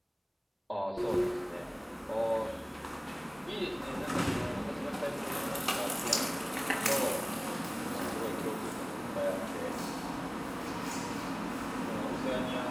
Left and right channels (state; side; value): identical; both; correlation 1.00